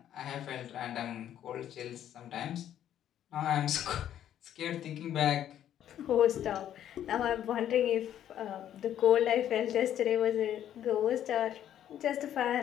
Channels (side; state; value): right; quieter; 10.8 dB